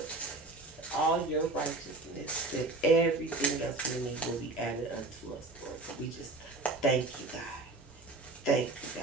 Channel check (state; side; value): quieter; left; 3.1 dB